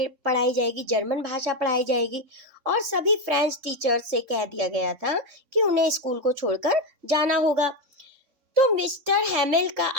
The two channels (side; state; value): left; late; 3.8 ms